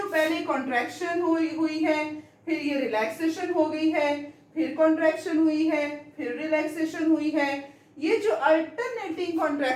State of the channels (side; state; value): both; identical; correlation 1.00